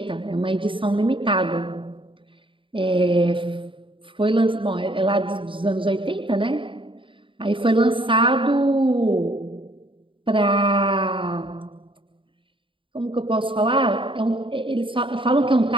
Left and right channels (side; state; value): left; late; 0.25 ms